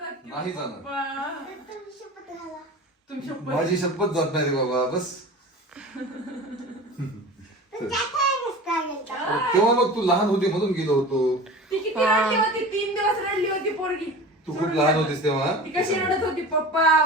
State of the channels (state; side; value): normal; both; correlation 0.36